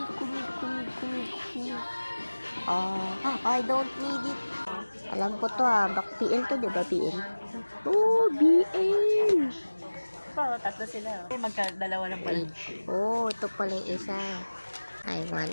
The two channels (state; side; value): inverted; both; correlation -1.00